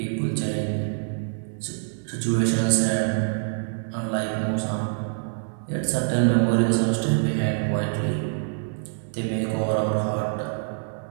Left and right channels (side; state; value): left; silent; 61 dB below the other